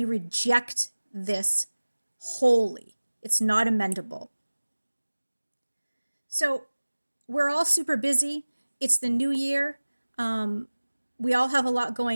this wholly. It's not amendable. So we're all super busy. It's the new year. We all have a lot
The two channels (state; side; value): inverted; both; correlation -1.00